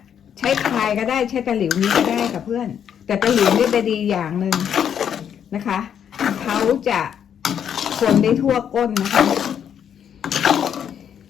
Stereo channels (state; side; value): quieter; right; 8.7 dB